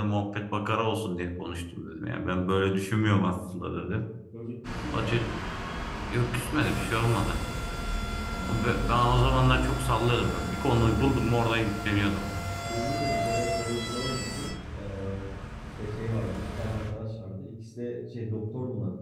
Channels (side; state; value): both; identical; correlation 1.00